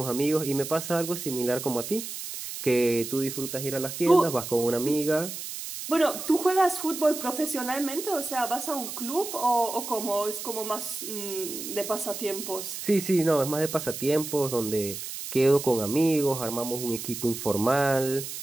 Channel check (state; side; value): noise; right; hiss, 8 dB below the sound